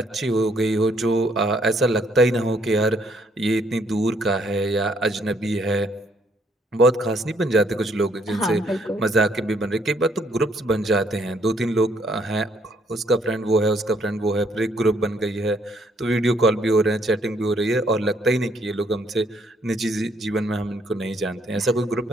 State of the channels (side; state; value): both; normal; correlation 0.68